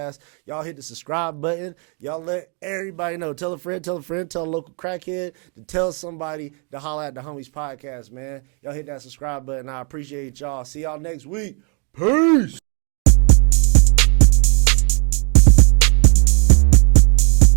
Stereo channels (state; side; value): quieter; left; 37.9 dB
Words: Y'all hit the subscribe button. Y'all let everybody know. Tell a friend, tell a local crackhead to tell somebody to holler at the Homies Podcast, man. Y'all hit that subscribe button. I appreciate y'all. See y'all next week. Peace.